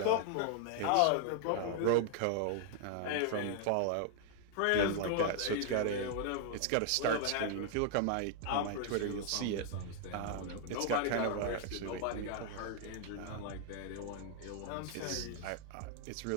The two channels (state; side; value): different; both; correlation 0.00